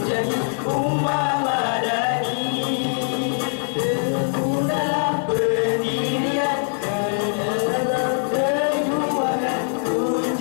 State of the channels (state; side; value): silent; right; 60 dB below the other